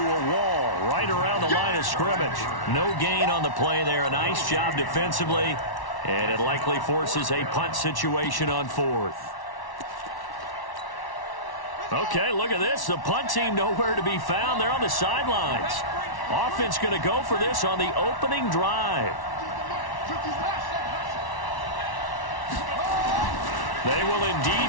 a wall right around the line of scrimmage. No gain on the play there. A nice job defensively. And it likely forces a punt situation on fourth. Okay, look at this. The punt team nowhere to be found. They're on the sidelines. Offense going to go for this on the opening drive. They will indeed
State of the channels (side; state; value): right; late; 1.1 ms